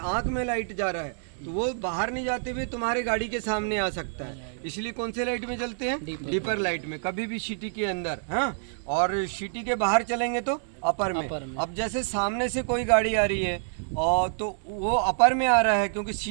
आंख में लाइट जा रहा है तो वो बाहर नहीं जाते हुए तुम्हारे गाड़ी के सामने आ सकता है। इसलिए कौन से लाइट में चलते हैं? डीपर लाइट में, कभी भी सिटी के अंदर। हाँ, और सिटी के बाहर चलेंगे तो अपर में। अब जैसे सामने से कोई गाड़ी आ रही है और तो वो अपर में आ रहा है, क्योंकि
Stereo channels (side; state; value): left; silent; digital silence